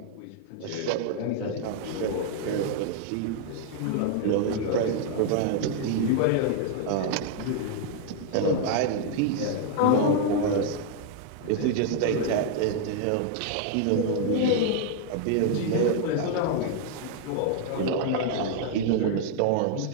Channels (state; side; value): different; both; correlation 0.00